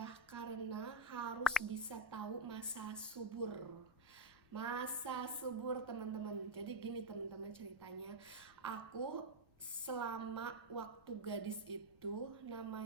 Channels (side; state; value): left; noise; rumble, 28 dB below the sound